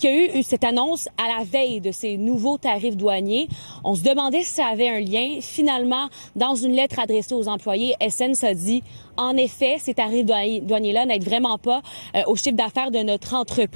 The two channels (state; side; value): inverted; both; correlation -1.00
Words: y a eu cette annonce à la veille de ces nouveaux tarifs douaniers. On se demandait si ça avait un lien. Finalement, dans une lettre adressée aux employés, Essence a dit en effet, ces tarifs douaniers-là n'aident vraiment pas au chiffre d'affaires de notre